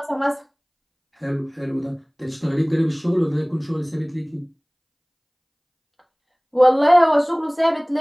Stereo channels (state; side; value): identical; both; correlation 1.00